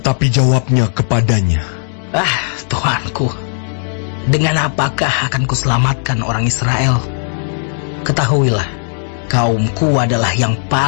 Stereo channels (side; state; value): right; silent; digital silence